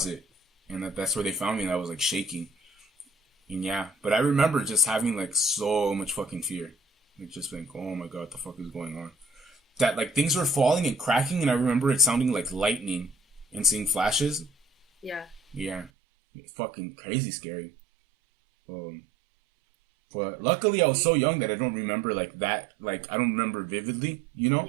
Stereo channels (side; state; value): left; drops out; at 15.9 s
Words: and that's where they found me, and I was like shaking. And yeah, but I remember just having like so much fucking fear, like just like, oh my god, what the fuck is going on? That like things were falling and cracking, and I remember it sounding like lightning and seeing flashes. Yeah, fucking crazy scary. But luckily I was so young that I don't remember like that. Like I don't remember vividly, you know.